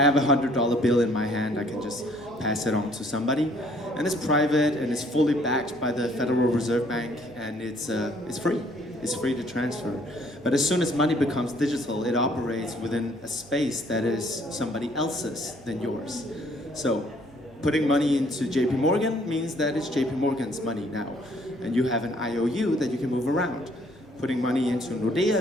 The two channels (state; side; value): normal; both; correlation 0.62